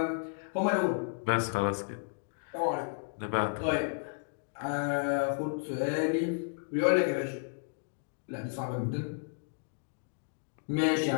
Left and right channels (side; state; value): right; silent; digital silence